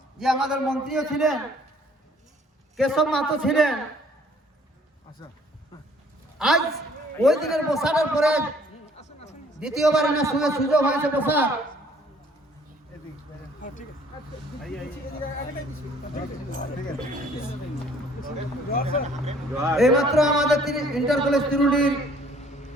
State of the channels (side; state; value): both; normal; correlation 0.59